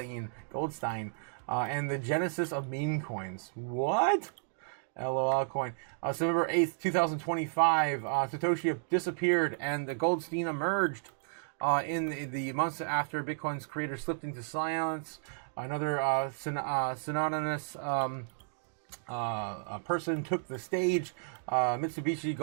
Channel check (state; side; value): silent; left; digital silence